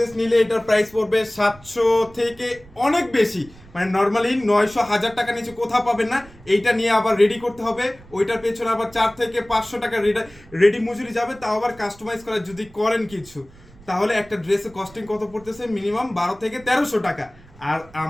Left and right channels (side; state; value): right; noise; rumble, 23 dB below the sound